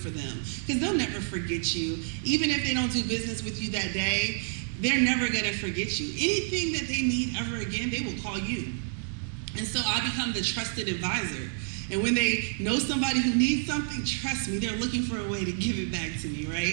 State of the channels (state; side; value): silent; left; digital silence